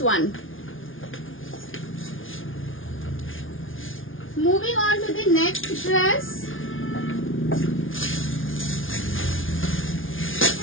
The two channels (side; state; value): right; late; 0.58 ms